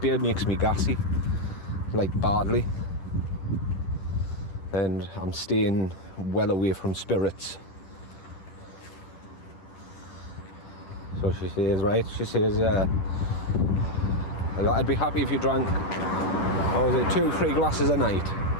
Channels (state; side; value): late; right; 10 ms